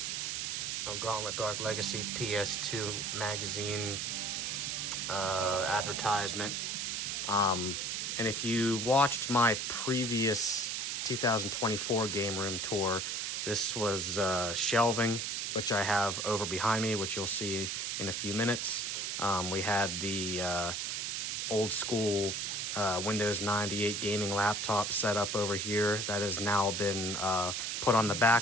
Gauntlet Dark Legacy PS2 magazine advertisement. And if you watched my previous 2024 Game Room Tour, this was shelving, which I have over behind me, which you'll see in a few minutes. We had the old school Windows 98 gaming laptop set up over here. That has now been put on the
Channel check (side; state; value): right; noise; hiss, 2 dB below the sound